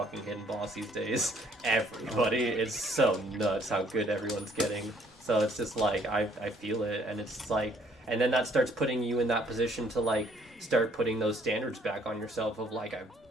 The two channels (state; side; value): normal; both; correlation 0.63